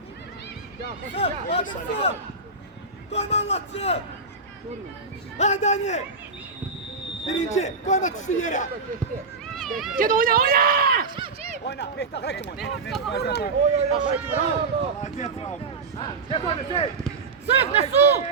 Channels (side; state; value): left; quieter; 4.2 dB